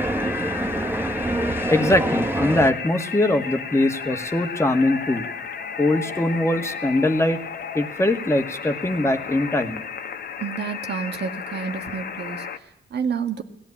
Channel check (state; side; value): normal; both; correlation 0.73